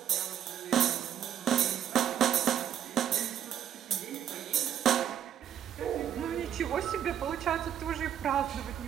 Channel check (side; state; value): left; quieter; 9.6 dB